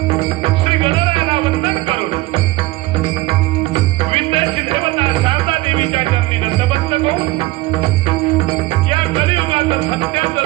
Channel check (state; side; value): quieter; left; 19.6 dB